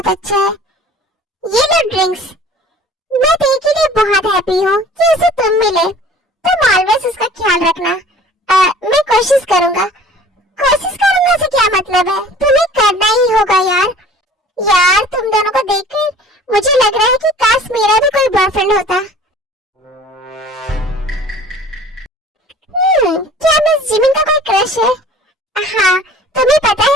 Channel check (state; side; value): normal; both; correlation 0.47